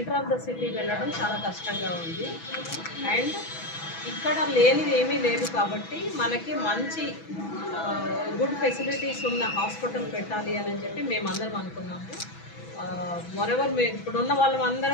ఆఫ్ ద సిటీ వెళ్ళడం చాలా కష్టంగా ఉంది. అండ్ ఇక్కడ లేనిది ఏమీ లేదు కాబట్టి మనకి మంచి గుడ్ ఫెసిలిటీస్ ఉన్న హాస్పిటల్ పెట్టాలి అని చెప్పి మేమందరం అనుకున్నాము. మొరెవర్ ఇప్పుడున్న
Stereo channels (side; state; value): right; late; 6.1 ms